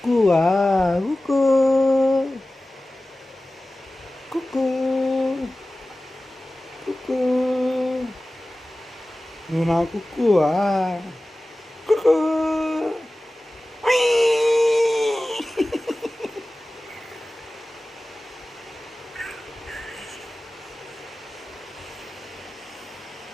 కుక్కో కుక్కో కుక్కో నువ్వు నా కుక్కువా కుక్కో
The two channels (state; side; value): normal; both; correlation 0.96